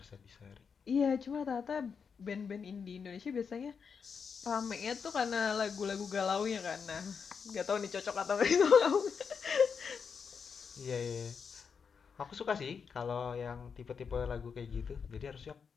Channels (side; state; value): right; quieter; 6.1 dB